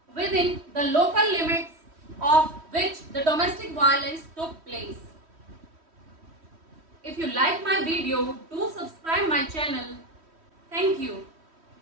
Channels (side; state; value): left; late; 3.1 ms